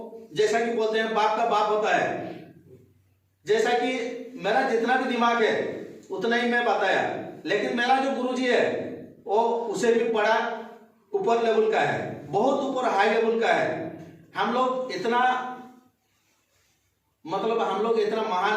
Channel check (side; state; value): both; identical; correlation 1.00